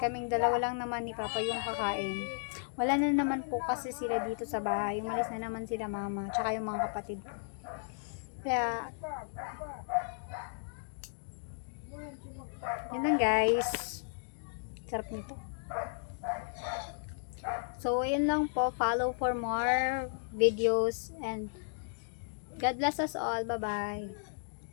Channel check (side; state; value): right; silent; digital silence